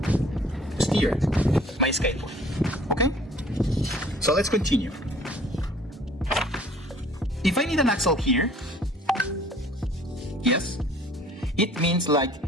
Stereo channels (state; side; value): normal; both; correlation 0.53